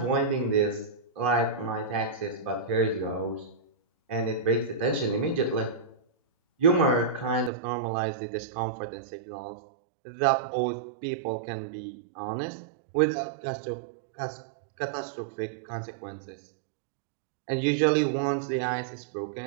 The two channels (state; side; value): drops out; left; at 7.5 s